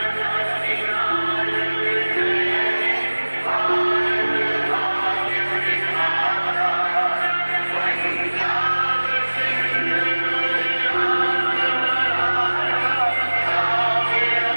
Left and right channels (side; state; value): both; inverted; correlation -1.00